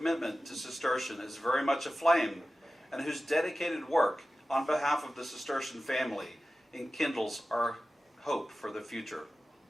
to Cistercian is very much aflame and whose dedicated work on behalf of the Cistercian family enkindles our hope for the future.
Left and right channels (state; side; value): normal; both; correlation 0.95